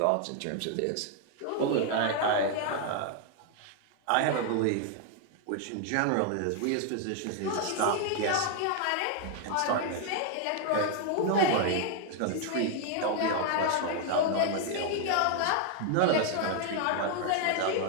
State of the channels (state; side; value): different; both; correlation 0.00